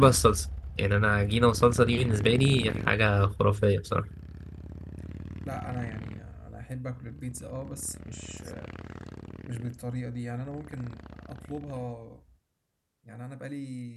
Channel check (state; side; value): identical; both; correlation 1.00